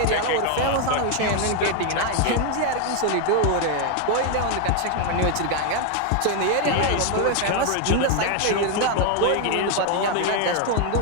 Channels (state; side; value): different; both; correlation 0.01